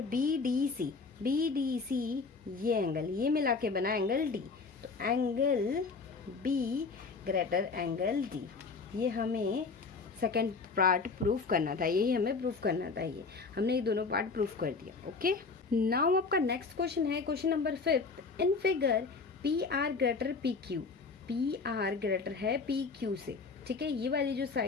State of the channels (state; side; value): quieter; right; 4.5 dB